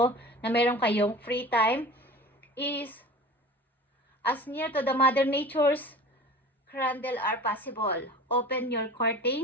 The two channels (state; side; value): normal; both; correlation 0.39